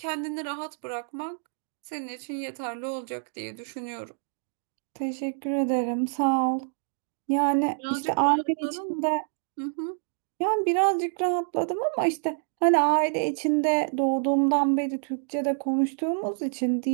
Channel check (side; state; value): left; silent; digital silence